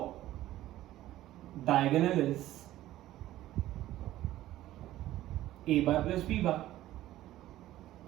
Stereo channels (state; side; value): quieter; left; 14.6 dB